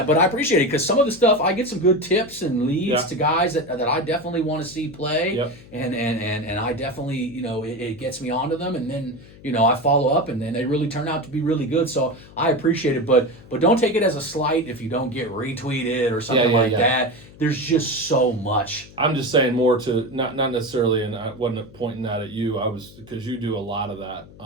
but I appreciate it because some of the stuff I get some good tips and leads to guys that I definitely want to see play, and I definitely it gets me onto them, and then I follow up, and then they really turn out to be really good. So I appreciate it, but don't take it as a slight if you don't get retweeted or something like that. There's just so much. I'm just saying more to not necessarily, and I wasn't pointing that at you. I was, because you do a lot of that.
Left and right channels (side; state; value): left; noise; hum, 21 dB below the sound